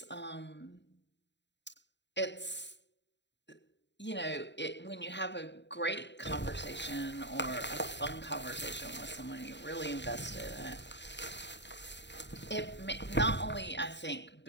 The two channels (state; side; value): late; right; 0.52 ms